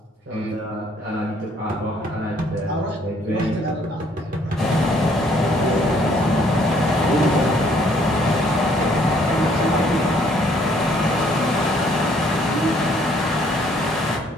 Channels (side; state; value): both; normal; correlation 0.64